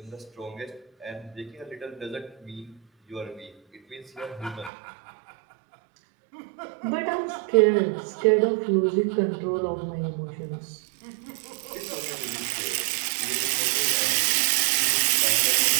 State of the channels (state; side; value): drops out; left; at 4.7 s